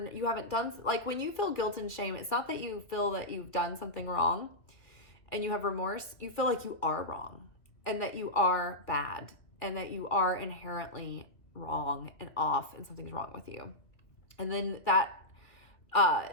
haven't done, like when you feel guilt and shame, it's not that you feel that you've done something wrong and you have remorse. You feel like you are wrong and that you are bad and that you are inherently wrong and off and something's wrong with you. And then that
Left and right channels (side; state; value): right; late; 2.0 ms